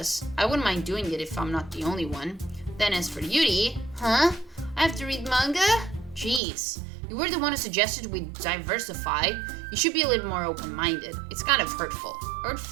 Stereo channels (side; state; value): left; drops out; at 6.4 s